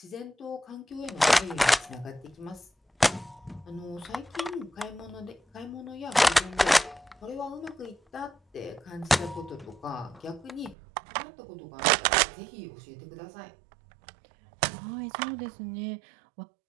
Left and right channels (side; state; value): left; drops out; at 10.8 s